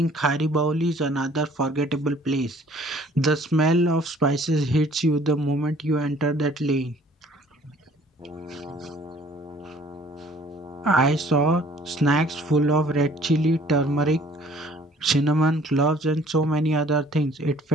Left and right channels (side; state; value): both; normal; correlation 0.56